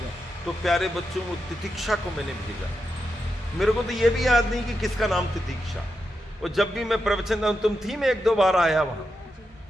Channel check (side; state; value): both; normal; correlation 0.87